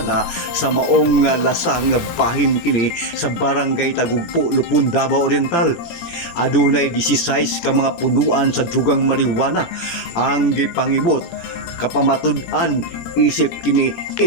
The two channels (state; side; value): late; right; 18 ms